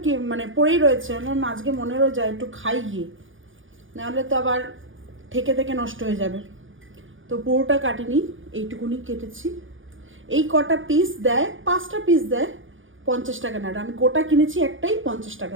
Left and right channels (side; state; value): left; late; 0.57 ms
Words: মানে পড়েই রয়েছে, আমার আজকে মনেরও যায় একটু খাই গিয়ে, নাহলে তো আবার থেকে থেকে নষ্ট হয়ে যাবে। তো পুরোটা কাটিনি, এইটুকুনি কেটেছি। এই কটা পিস দেয়, 5টা পিস দেয় 50 টাকা না, আমি গোটা কিনেছি একটাই 50